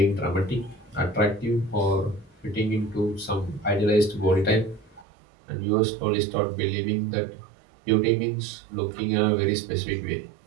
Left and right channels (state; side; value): drops out; left; at 5.1 s